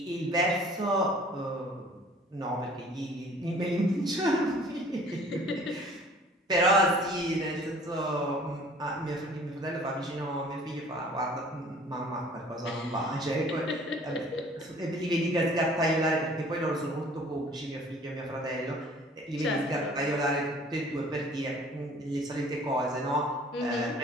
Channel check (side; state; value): both; normal; correlation 0.52